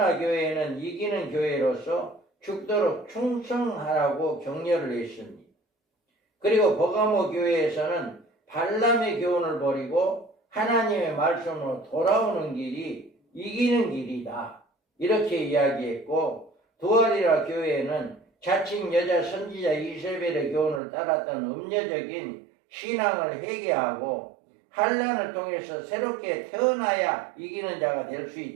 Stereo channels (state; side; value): drops out; left; at 20.8 s